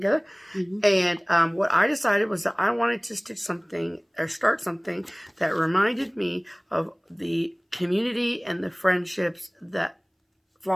And what I decided was that I wanted to stitch something or start something that reminded me of the community and the friendships that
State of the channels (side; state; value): both; identical; correlation 1.00